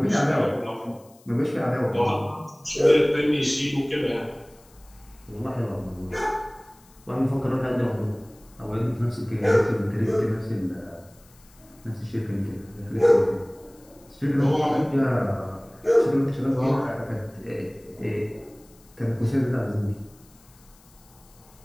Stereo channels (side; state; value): left; noise; hiss, 28 dB below the sound